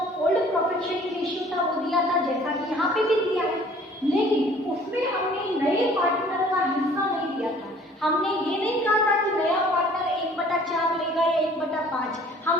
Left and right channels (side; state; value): both; normal; correlation 0.53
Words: ओल्ड प्रॉफिट शेयरिंग रेशियो था वो दिया था जैसा कि यहाँ पे भी दिया है, लेकिन उसमें हमने नए पार्टनर का हिस्सा नहीं दिया था। हमने ये नहीं कहा था कि नया पार्टनर 1/4 लेगा या 1/5।